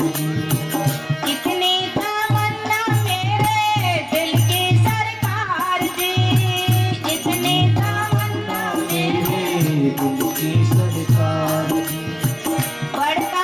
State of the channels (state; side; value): identical; both; correlation 1.00